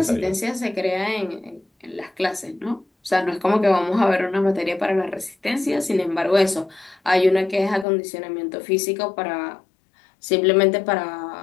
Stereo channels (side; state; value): right; drops out; at 7.9 s